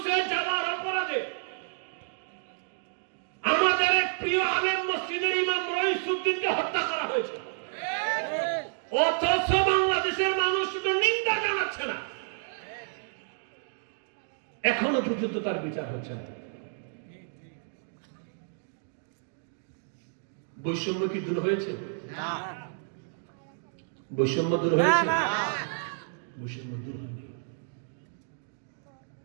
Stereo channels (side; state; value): left; silent; digital silence